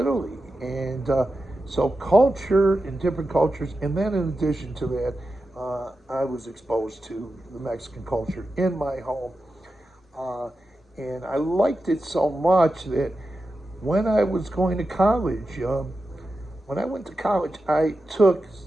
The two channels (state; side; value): normal; both; correlation 0.91